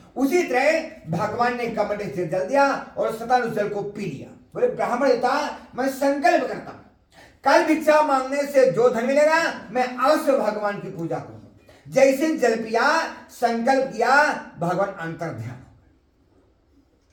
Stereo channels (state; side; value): identical; both; correlation 1.00